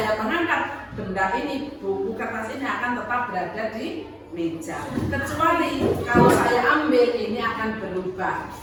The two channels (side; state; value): both; identical; correlation 1.00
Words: mengangkat, benda ini, buku kertas ini akan tetap berada di meja. Kecuali kalau saya ambil, ini akan berubah,